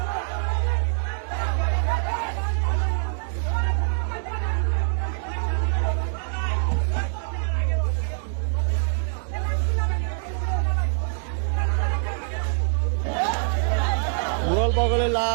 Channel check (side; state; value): left; silent; digital silence